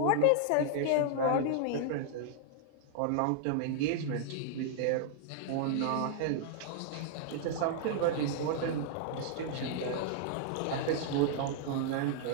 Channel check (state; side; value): different; both; correlation -0.01